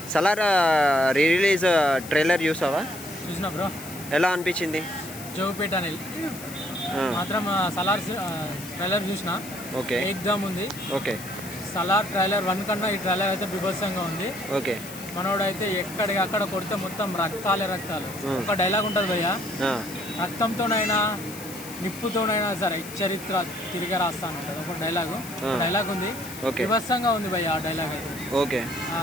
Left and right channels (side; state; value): left; noise; hiss, 14 dB below the sound